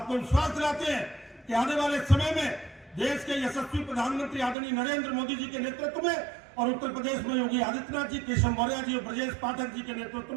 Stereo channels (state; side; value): drops out; left; at 4.5 s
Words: विश्वास दिलाते हैं कि आने वाले समय में देश के यशस्वी प्रधानमंत्री आदरणीय नरेंद्र मोदी जी के नेतृत्व में और उत्तर प्रदेश में योगी आदित्यनाथ जी, केशव मौर्य जी और ब्रजेश पाठक जी के नेतृत्व